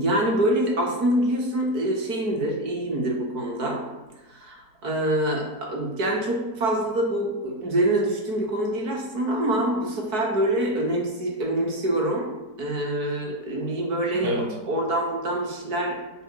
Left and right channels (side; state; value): left; late; 4.6 ms